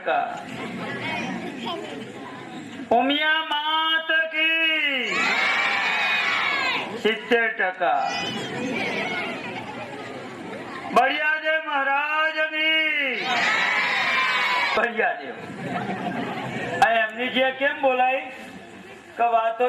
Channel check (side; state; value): both; identical; correlation 1.00